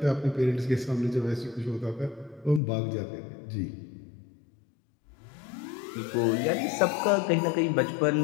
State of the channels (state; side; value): drops out; right; at 2.6 s